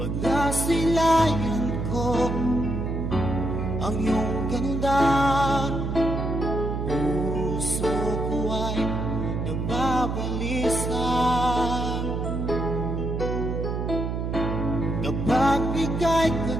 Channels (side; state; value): right; noise; hum, 2 dB below the sound